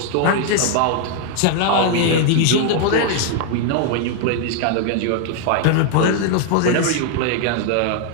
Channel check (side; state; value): both; different; correlation 0.00